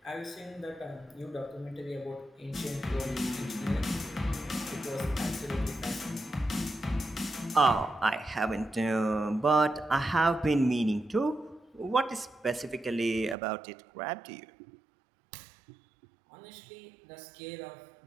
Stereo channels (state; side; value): drops out; left; at 13.4 s